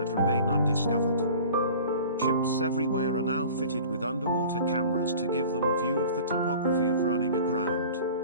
remain undiscovered. Ships everywhere are now fitted with underwater cameras to give them a view of the topography of running aground.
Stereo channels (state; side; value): inverted; both; correlation -0.43